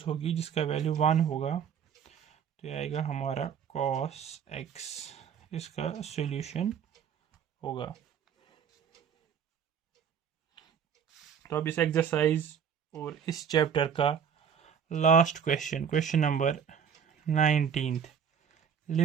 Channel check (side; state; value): left; quieter; 7.6 dB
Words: होगी जिसका value 1 होगा। तो ये आएगा हमारा cos x, इसका सॉल्यूशन होगा। तो अब इस एक्सरसाइज और इस चैप्टर का last question, question number 19,